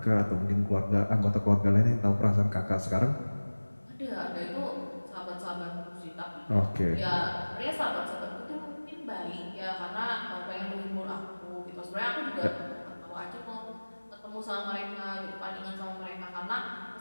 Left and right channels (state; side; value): inverted; both; correlation -1.00